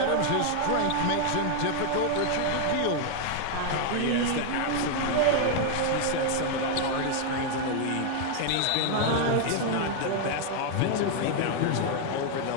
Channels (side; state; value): both; different; correlation 0.00